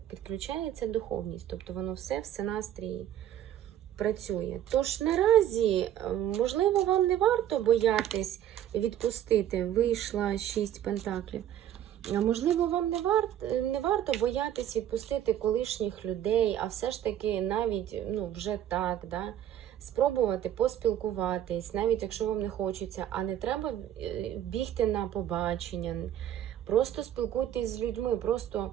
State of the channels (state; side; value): quieter; left; 11.1 dB